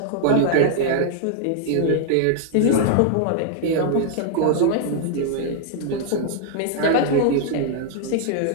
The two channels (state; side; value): different; both; correlation 0.00